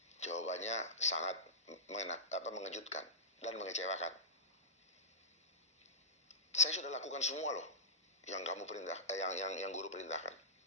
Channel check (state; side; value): normal; both; correlation -0.13